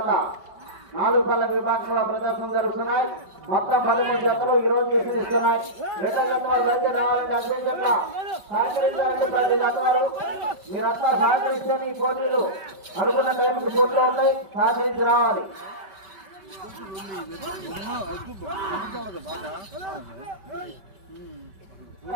4 పళ్ళ విభాగంలో ప్రదర్శన జరుగుతున్నాయి. మొత్తం 13 జతలు ఈ రోజు ఇస్తున్నాయి. రెండో జత వారు రావాలంటే అన్ని జత సహకరించాలంటే 10 జత వారు మీరంతా సహకరిస్తే ఈ పోటీలు అనుకున్న టైంకి పోటీలో ఉంటాయి. సహకరించి రావాలి.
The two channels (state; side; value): late; left; 5.2 ms